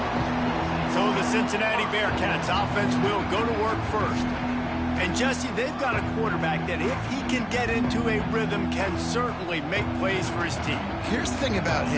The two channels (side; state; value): both; identical; correlation 1.00